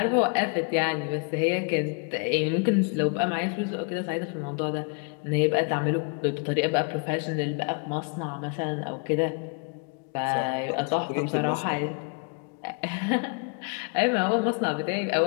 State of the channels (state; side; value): quieter; right; 36.1 dB